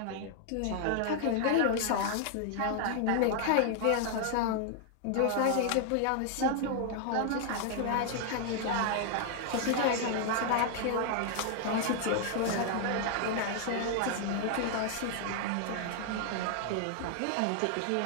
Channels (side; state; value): both; different; correlation 0.00